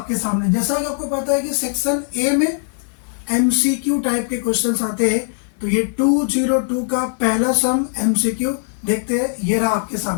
सामने। जैसा कि आपको पता है कि सेक्शन ए में MCQ टाइप के क्वेश्चंस आते हैं, तो ये 202 का पहला सम MCQ देखते हैं। ये रहा आपके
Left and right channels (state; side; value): silent; right; 66 dB below the other